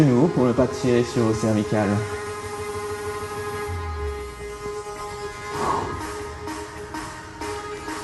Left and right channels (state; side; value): identical; both; correlation 1.00